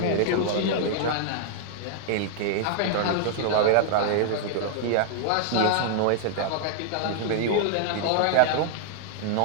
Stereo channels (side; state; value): both; different; correlation -0.01